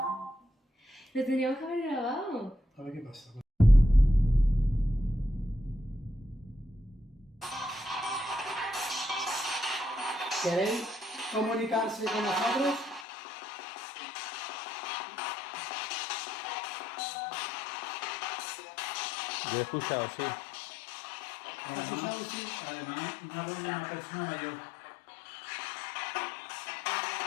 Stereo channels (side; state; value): right; drops out; at 13.1 s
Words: Lo tendríamos que haber grabado. A ver qué pasa. ¿Queréis comunicarse con nosotros? Yo he escuchado, sí. Además, una voz de una persona mayor.